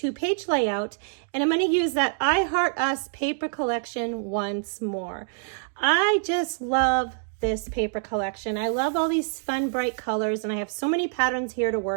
layout and I'm going to use that I Heart Us paper collection once more. I just love this paper collection. I love all these fun bright colors and I have so many patterns here to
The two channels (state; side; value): silent; left; digital silence